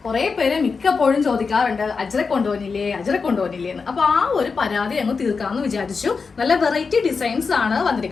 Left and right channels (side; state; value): right; quieter; 4.9 dB